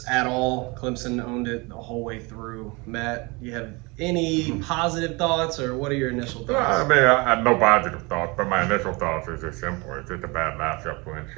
at all. Clemson owned it the whole way through. Matt, you have any positive thoughts, or what are your initial thoughts? I have no positive thoughts, but my initial thoughts is just simple. It's just a bad matchup for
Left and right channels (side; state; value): left; quieter; 26.9 dB